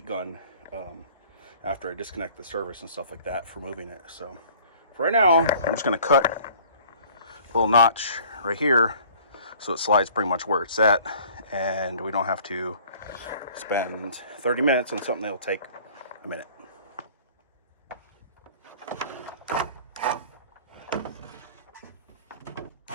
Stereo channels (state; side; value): inverted; both; correlation -0.51